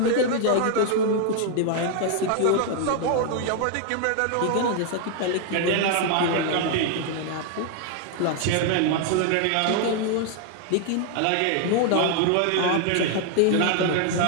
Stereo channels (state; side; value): different; both; correlation 0.00